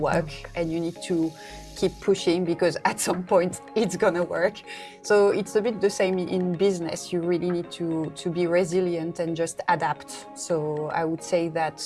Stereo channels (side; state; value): both; identical; correlation 1.00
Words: and you need to keep pushing because at some point it's gonna work. So it's a bit the same in business. You really need to be resilient and just adapt. So I would say that